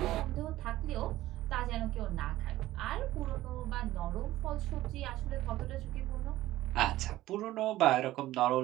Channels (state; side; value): quieter; left; 15.7 dB